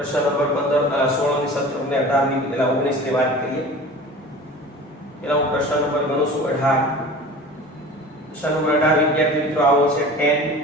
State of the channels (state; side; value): normal; both; correlation 0.39